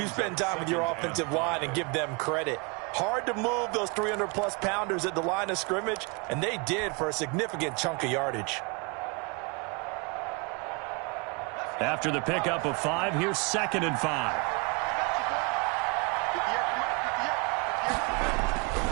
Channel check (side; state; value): left; quieter; 31.1 dB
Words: spend time with your offensive line and give them credit. Hard to move those 300-plus pounders at the line of scrimmage, and they did for a significant chunk of yardage. After the pickup of 5, here's 2nd and 5.